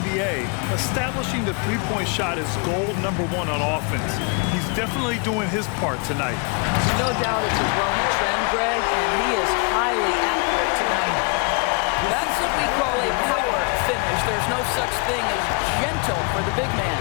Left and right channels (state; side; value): quieter; right; 35.2 dB